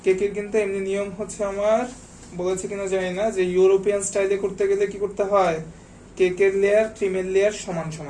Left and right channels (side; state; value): both; identical; correlation 1.00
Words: কেকের কিন্তু এমনি নিয়ম হচ্ছে, আমার বলেছে কিনা জানি না, যে ইউরোপিয়ান স্টাইলে করতে গেলে কি করতে হয়, কেকের লেয়ার ক্রিমের লেয়ার সমান